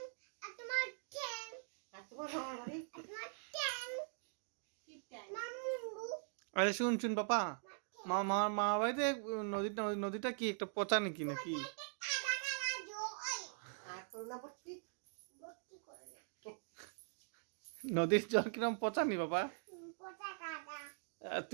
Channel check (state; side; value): silent; left; digital silence